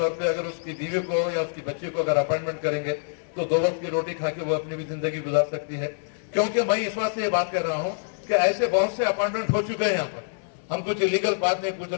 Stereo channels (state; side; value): silent; right; 61 dB below the other